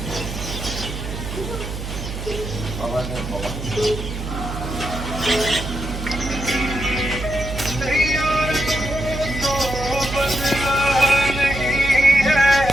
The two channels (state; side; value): noise; right; hum, 7 dB below the sound